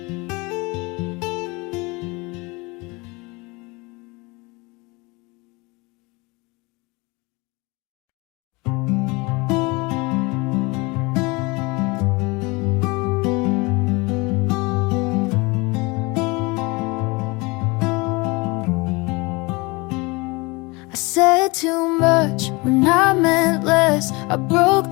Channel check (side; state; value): right; quieter; 25.8 dB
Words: Said too much when I meant less. I broke